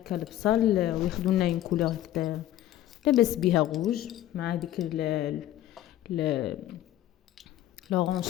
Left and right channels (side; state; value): right; quieter; 13.3 dB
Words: البصل وياخذوا لنا اون كولور هكذا لاباس بها غوج مع ديك